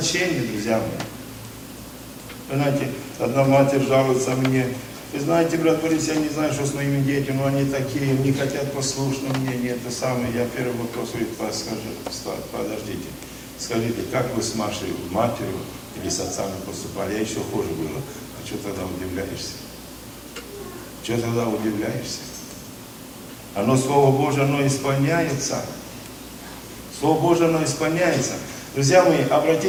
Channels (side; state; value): both; identical; correlation 1.00